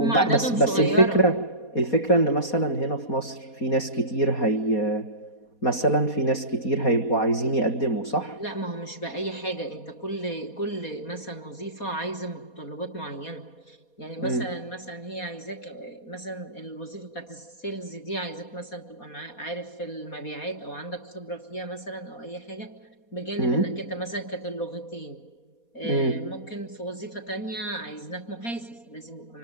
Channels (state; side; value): late; right; 4.2 ms